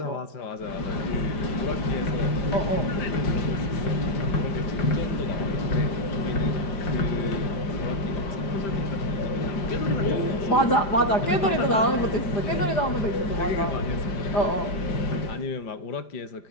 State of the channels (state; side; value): late; right; 5.0 ms